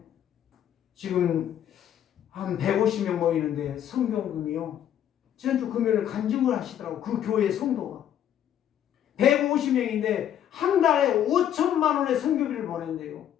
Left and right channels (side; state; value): right; quieter; 10.4 dB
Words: 지금 한 150명 모이는데 성경금이요. 지난주 금요일 간증을 하시더라고. 그 교회 성도가. 150명인데 한 달에 5천만 원의 성교비를 보낸대요.